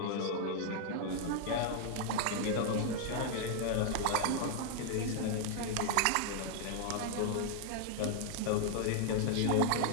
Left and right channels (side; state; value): both; different; correlation 0.00